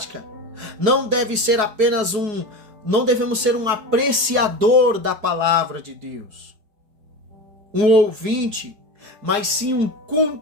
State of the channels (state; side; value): late; left; 4.7 ms